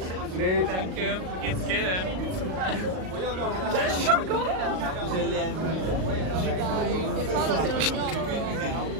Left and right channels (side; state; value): left; late; 38 ms